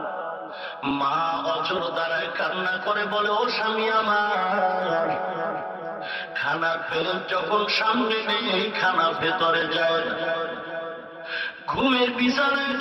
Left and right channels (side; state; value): both; identical; correlation 1.00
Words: মা অজর দ্বারায় কান্না করে বলে ও স্বামী আমার, খানার প্লেট যখন সামনে নেই খানা ভেতরে যায়, ঘুমের বিছানায়